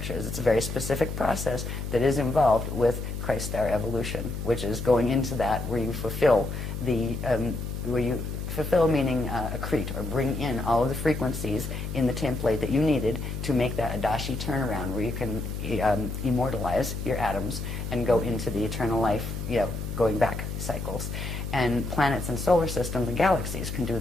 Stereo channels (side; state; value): left; noise; hum, 5 dB below the sound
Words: It's a very specific process that is involved with Christ star evolution, which is going into that where you fulfill the meaning accrete, or bring in all of the frequencies in the template that you needed to make that Adashi turnaround, where you can immortalize your atoms and go into the eternal life, going back cycles. And planets and solar systems and galaxies can do